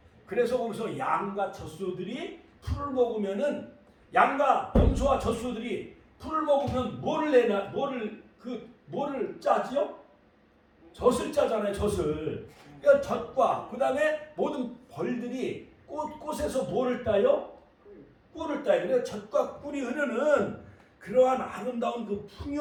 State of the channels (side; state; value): both; identical; correlation 1.00